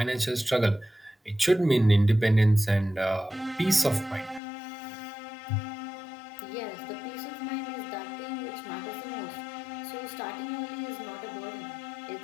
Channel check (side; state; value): right; drops out; at 4.4 s